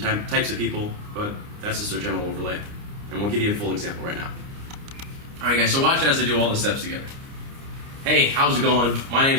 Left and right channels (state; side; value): late; left; 29 ms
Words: types of people, but that's just our general overlay. And we'll give you a full example right now. All right, guys, so watch as I do all the steps together. Hey, how's it going? My name